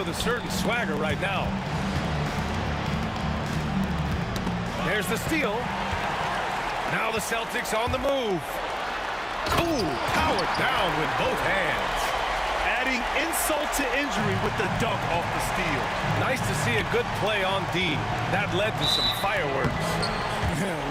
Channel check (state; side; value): identical; both; correlation 1.00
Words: a certain swagger right now. There's the steal. Now the Celtics on the move. Ooh, powered down with both hands. Adding insult to injury with the dunk off the steal. Nice to see a good play on D. That led to some fireworks.